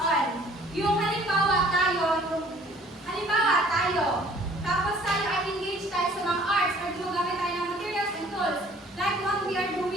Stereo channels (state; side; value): normal; both; correlation 0.55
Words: Yung halimbawa tayo, tapos tayo ay engage tayo sa mga arts or gumagamit tayo ng materials and tools, like what we are